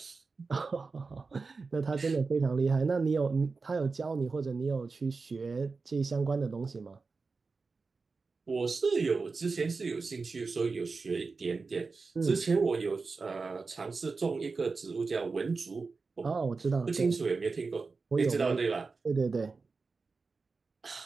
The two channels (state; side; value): quieter; left; 4.3 dB